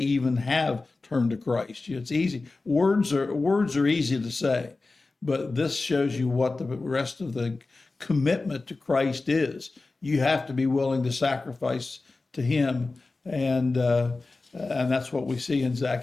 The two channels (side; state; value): right; quieter; 3.5 dB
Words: have turned to Christ. It's easy. Words are easy to say, but this shows you what the rest of the commitment to Christ is. You have to be willing to sacrifice to Him, and that's what we see in